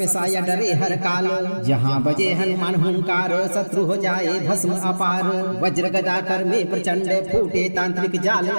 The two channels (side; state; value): both; inverted; correlation -1.00